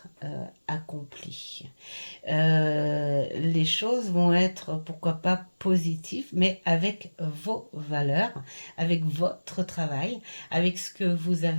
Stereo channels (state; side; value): inverted; both; correlation -1.00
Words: accomplies. les choses vont être, pourquoi pas, positives, mais avec vos valeurs, avec votre travail, avec ce que vous